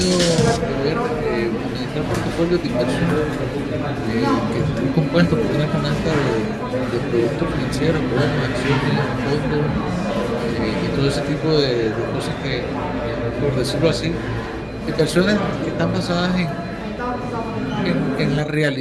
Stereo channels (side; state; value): both; identical; correlation 1.00